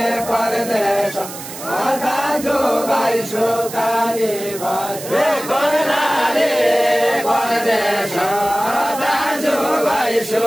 परदेश दाजु भाइ सुकारी भाइ कर्णाली परदेश दाजु भाइ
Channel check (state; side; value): noise; right; hiss, 12 dB below the sound